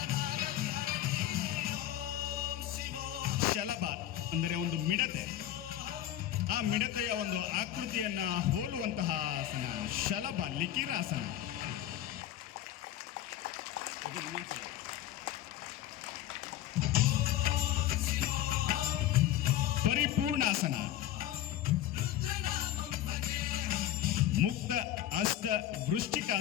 ಶಲಭ ಅಂದರೆ ಒಂದು ಮಿಡತೆ, ಆ ಮಿಡತೆಯ ಒಂದು ಆಕೃತಿಯನ್ನ ಹೋಲುವಂತಹ ಆಸನ ಶಲಭ ಲಿಕಿರಾಸನ. ಪರಿಪೂರ್ಣಾಸನ, ಮುಕ್ತ ಅಷ್ಟ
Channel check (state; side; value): quieter; right; 12.6 dB